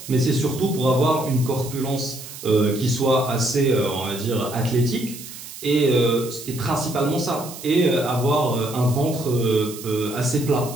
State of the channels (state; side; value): noise; right; hiss, 13 dB below the sound